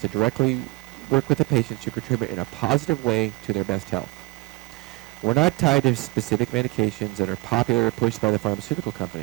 directly work with the patients to contribute in a positive way to their best health. We're not tied to specific medications that are popular or pushed by the pharmaceutical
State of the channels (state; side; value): quieter; left; 24.2 dB